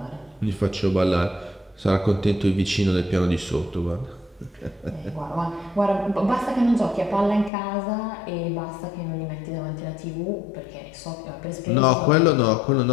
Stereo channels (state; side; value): drops out; right; at 7.5 s